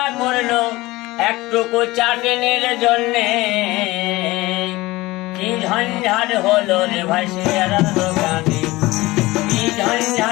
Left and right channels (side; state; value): right; quieter; 19.9 dB